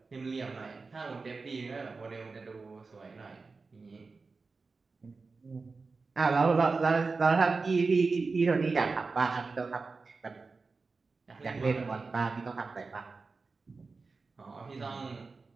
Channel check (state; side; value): quieter; left; 4.2 dB